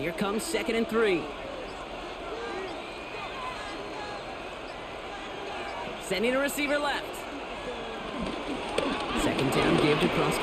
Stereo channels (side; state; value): both; identical; correlation 1.00